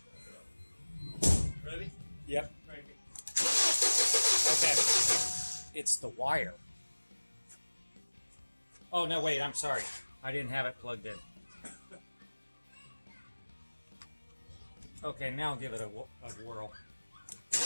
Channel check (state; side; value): inverted; both; correlation -1.00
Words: Ready? Yep. Cranking. Okay. It's the wire. Oh, no, wait, I'm sorry. I didn't have it plugged in. Okay, now give it a whirl.